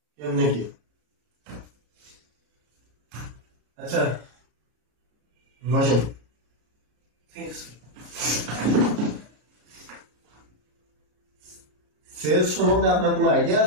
কেমনে কি? আচ্ছা বসেন। সেলস সম্বন্ধে আপনার কোনো আইডিয়া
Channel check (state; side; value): late; left; 33 ms